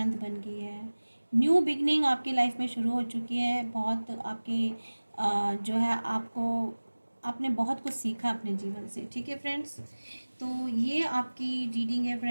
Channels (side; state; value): both; inverted; correlation -1.00